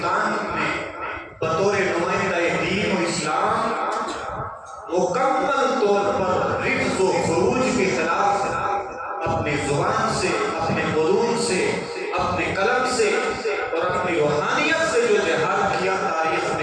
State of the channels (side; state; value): both; identical; correlation 1.00